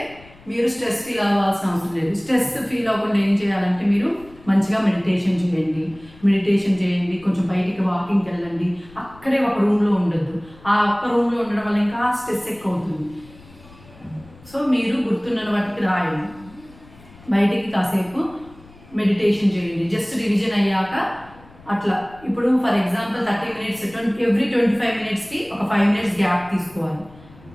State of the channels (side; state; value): left; noise; rumble, 23 dB below the sound